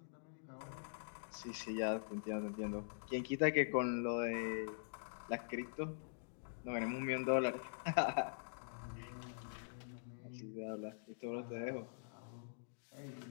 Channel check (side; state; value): right; silent; digital silence